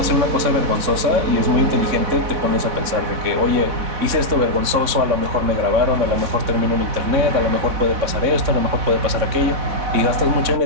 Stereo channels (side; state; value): left; late; 3.6 ms